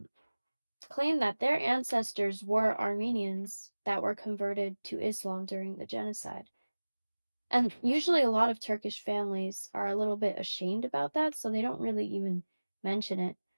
claim that their ancestors were Armenians that were converted to Islam during the genocide. And usually a lot of Turkish families are a little bit ashamed about that, so they don't really even mention it.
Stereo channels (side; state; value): both; inverted; correlation -1.00